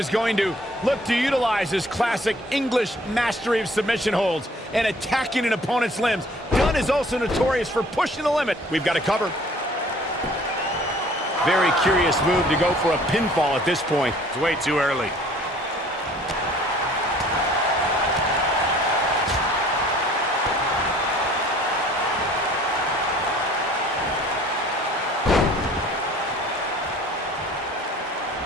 going to look to utilize his classic English mastery of submission holds and attacking an opponent's limbs. Dunne is also notorious for pushing the limit. We've got to cover. Very curious move to go for a pinfall at this point. It's way too early.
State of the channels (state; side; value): normal; both; correlation 0.53